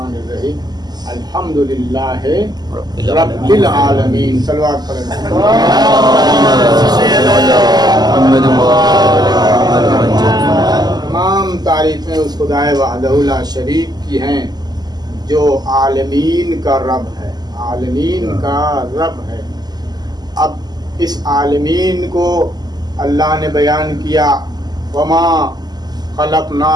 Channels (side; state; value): left; late; 0.20 ms